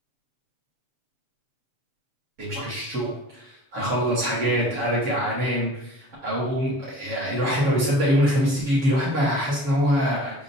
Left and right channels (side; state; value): left; late; 7.3 ms